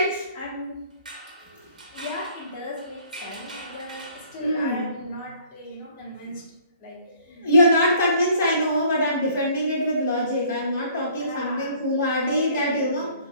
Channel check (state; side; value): inverted; both; correlation -0.57